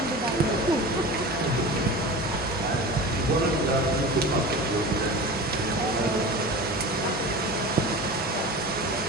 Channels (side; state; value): both; normal; correlation 0.33